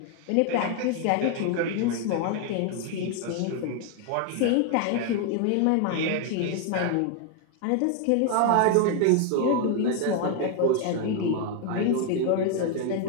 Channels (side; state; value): both; different; correlation 0.00